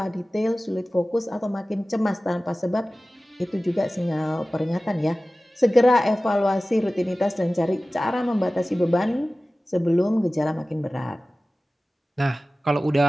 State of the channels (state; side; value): normal; both; correlation 0.97